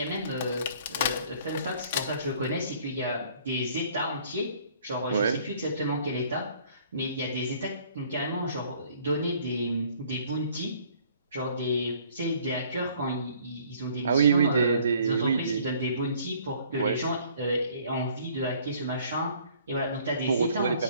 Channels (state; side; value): inverted; both; correlation -0.57